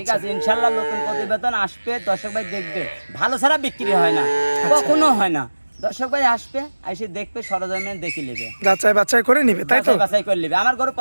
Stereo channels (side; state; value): both; inverted; correlation -1.00